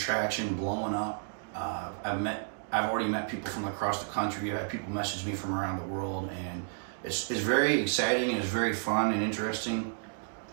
blowing up. I've already met people from across the country. I've had people message me from around the world, and it's very exciting, and it's very fun and interesting.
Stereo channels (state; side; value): silent; left; digital silence